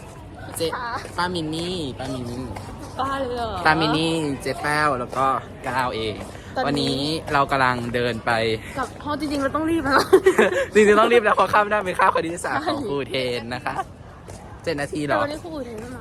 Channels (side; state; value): both; identical; correlation 1.00